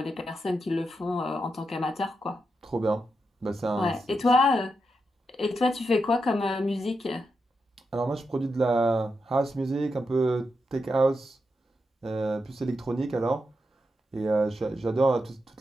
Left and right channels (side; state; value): both; normal; correlation 0.86